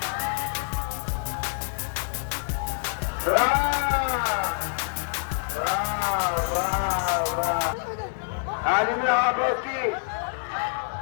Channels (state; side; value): silent; right; digital silence